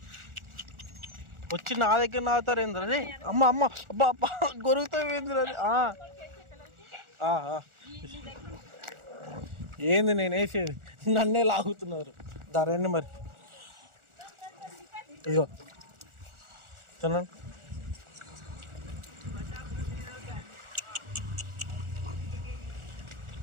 వచ్చి నా దగ్గర నాగుతారు ఏంద్రా? అరే అమ్మ అమ్మ అబ్బా అబ్బా గొరుగుతావు ఏంద్రా? ఏంది నేను వేసేది, నన్నే లాగుతున్నారు. రండి మరి, ఇదిగో తినండి.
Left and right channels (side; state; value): left; late; 1.4 ms